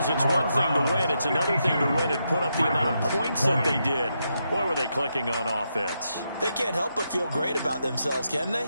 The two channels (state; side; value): inverted; both; correlation -0.83